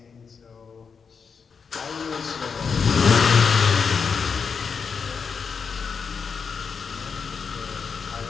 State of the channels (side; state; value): right; quieter; 5.8 dB